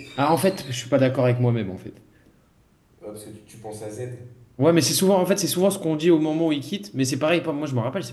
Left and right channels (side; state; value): both; identical; correlation 1.00